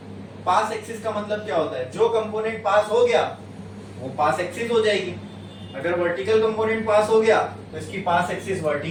पास एक्सिस का मतलब क्या होता है, जो कंपोनेंट पास हो गया वो पास एक्सिस हो जाएगी। अगर वर्टिकल कंपोनेंट पास हो गया तो इसकी पास एक्सिस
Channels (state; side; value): identical; both; correlation 1.00